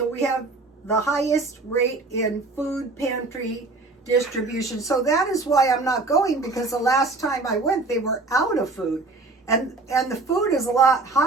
we have the highest rate in food pantry distribution. So that is why I'm not going, because the last time I went, they were out of food. And the food is a lot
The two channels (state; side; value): quieter; left; 3.5 dB